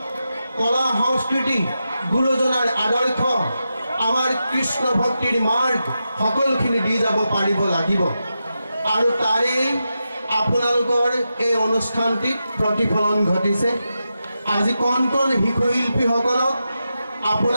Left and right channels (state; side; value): inverted; both; correlation -0.89